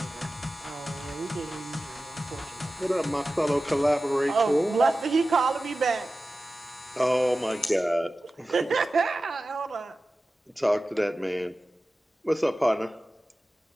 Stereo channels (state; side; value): normal; both; correlation 0.95